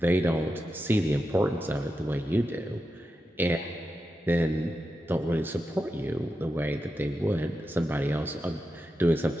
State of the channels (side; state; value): both; normal; correlation 0.89